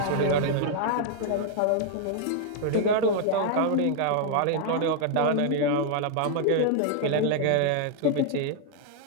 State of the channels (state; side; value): different; both; correlation 0.00